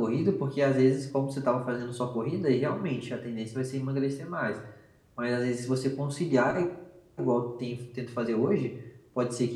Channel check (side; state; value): both; identical; correlation 1.00